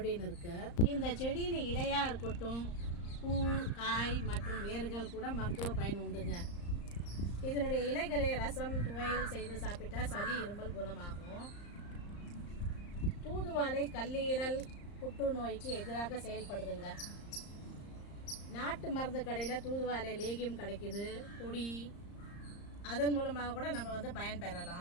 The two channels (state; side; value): late; right; 34 ms